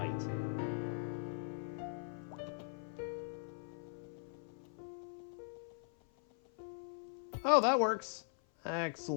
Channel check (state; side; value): silent; right; 51 dB below the other